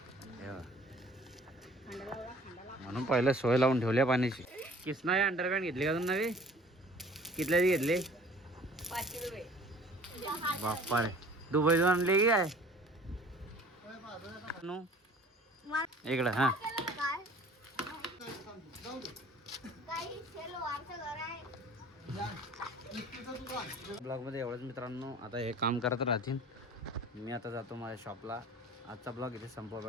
म्हणून पहिले सोय लावून ठेवल्या पाण्याची. किसना हे अंडरपॅन्ट घेतली का तुम्ही नवी? कितल्याची घेतली? 500 रुपये. बाप्पा रे दुबईतून आणली की काय? इकडं हा ब्लॉग मध्ये एवढंच मित्रांनो. आता हे काम करत राहतील. मी आता जातो माझ्या शॉपला. आजचा ब्लॉग इथे संपवा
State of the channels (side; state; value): both; normal; correlation 0.50